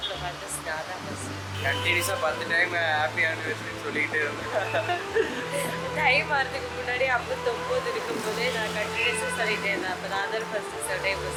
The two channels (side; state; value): both; identical; correlation 1.00